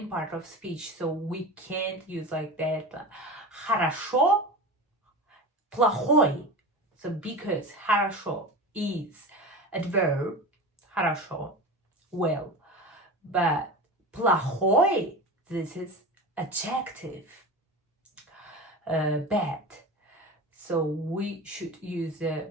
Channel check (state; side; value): normal; both; correlation 0.29